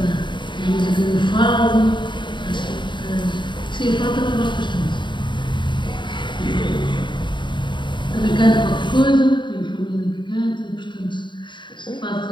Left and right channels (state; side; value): late; right; 0.23 ms